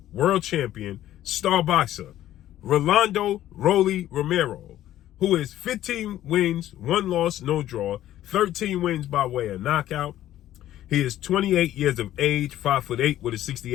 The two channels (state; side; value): quieter; right; 13.1 dB